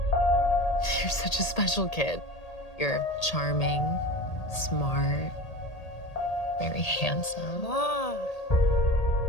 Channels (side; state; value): right; late; 1.8 ms